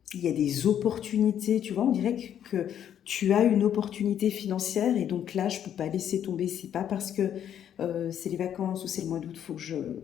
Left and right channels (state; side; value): quieter; right; 9.8 dB